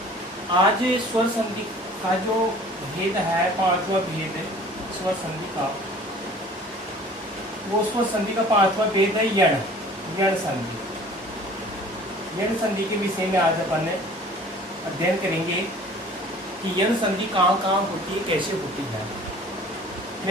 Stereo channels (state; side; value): normal; both; correlation 0.48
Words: आज स्वर संधि का जो भेद है, पांचवा भेद स्वर संधि का, वो स्वर संधि का पांचवा भेद है यण यण संधि। यण संधि के विषय में आज अपन अध्ययन करेंगे कि यण संधि कहाँ कहाँ होती है, कैसे होती है।